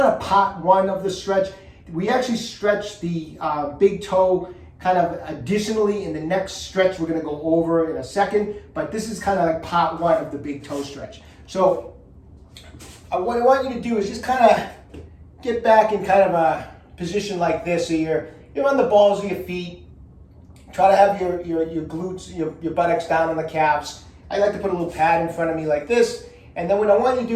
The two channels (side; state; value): both; identical; correlation 1.00